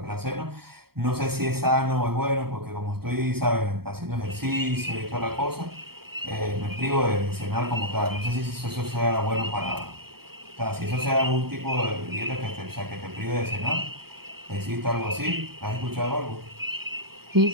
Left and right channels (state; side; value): late; left; 0.95 ms